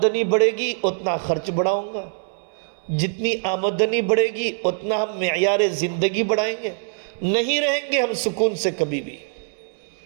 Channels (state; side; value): silent; left; 63 dB below the other